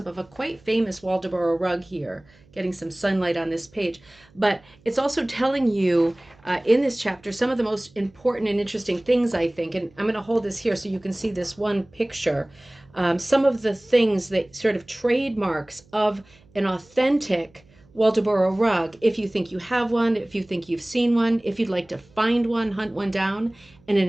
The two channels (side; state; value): right; noise; hum, 29 dB below the sound